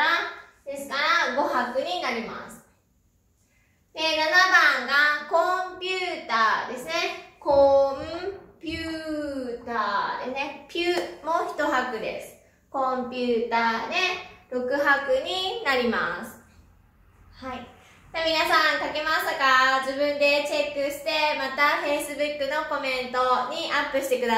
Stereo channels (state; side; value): identical; both; correlation 1.00